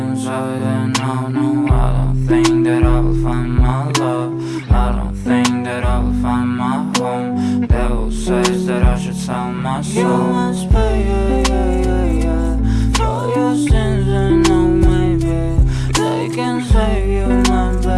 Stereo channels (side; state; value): both; identical; correlation 1.00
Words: And no, I don't think that I will find my love. I don't think that I will find my home. Devil says that I should sell my soul. You must pay, yeah, for your sins, and no, maybe they can save you, my